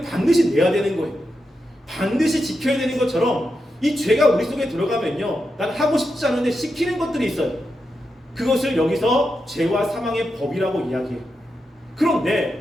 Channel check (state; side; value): normal; both; correlation 0.87